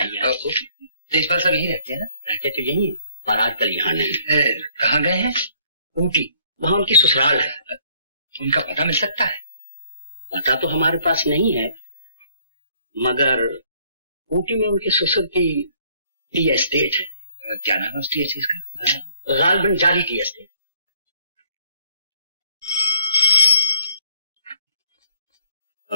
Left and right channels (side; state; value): both; inverted; correlation -0.63